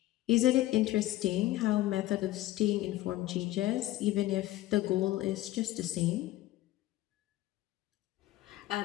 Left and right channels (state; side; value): quieter; right; 15.8 dB